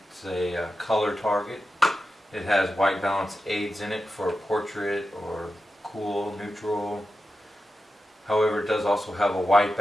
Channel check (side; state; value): both; normal; correlation 0.91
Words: a color target. It has white balance aids in it for portrait or cool, neutral. However, it does also have a white